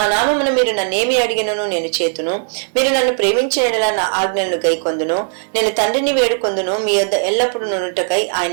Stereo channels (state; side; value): silent; left; digital silence